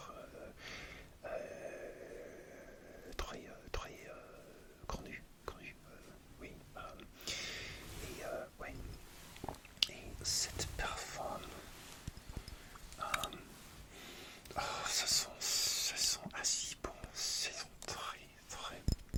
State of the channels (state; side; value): identical; both; correlation 1.00